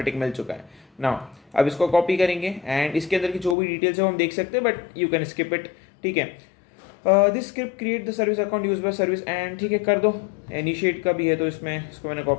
टिक मिल चुका है। नाउ अब इसको कॉपी करेंगे एंड इसके अंदर की जो भी डिटेल्स है वो हम देख सकते हैं, but you can skip it. ठीक है, this script create the service account use by service and, ठीक है कर दो। इनिशिएट का भी है तो इसमें इसको मैंने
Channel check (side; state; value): right; drops out; at 3.6 s